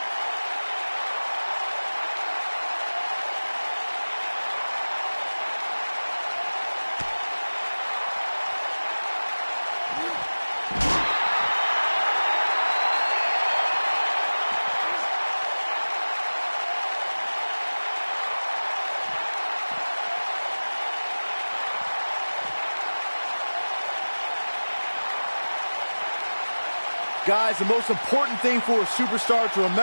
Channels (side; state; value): both; inverted; correlation -1.00